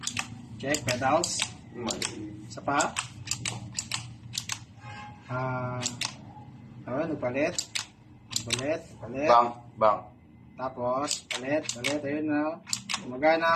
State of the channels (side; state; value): both; identical; correlation 1.00